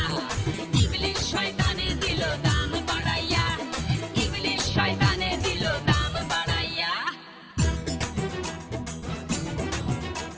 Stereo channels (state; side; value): identical; both; correlation 1.00